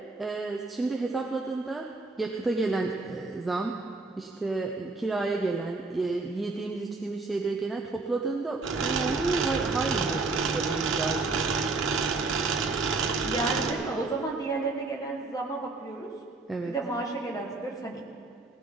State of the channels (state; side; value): quieter; left; 3.6 dB